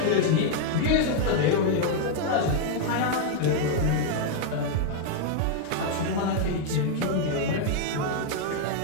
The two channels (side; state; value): both; different; correlation 0.00